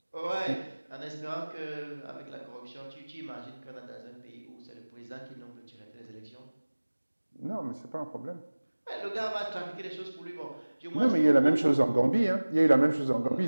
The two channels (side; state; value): both; inverted; correlation -1.00